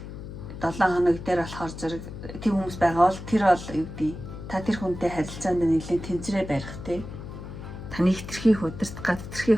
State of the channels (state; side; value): noise; left; hum, 11 dB below the sound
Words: 7 хоног дээр болохоор зэрэг тийм хүмүүс байгаа бол тэр бол юу гэдэг та тэр хүнтэй харилцаанд нэлээд тэнцрээ барих те таны хитрхийг удирдах гад